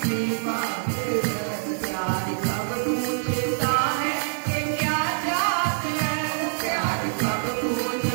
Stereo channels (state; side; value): silent; left; digital silence